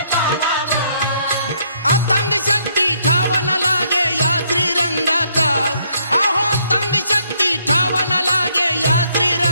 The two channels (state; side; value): inverted; both; correlation -0.70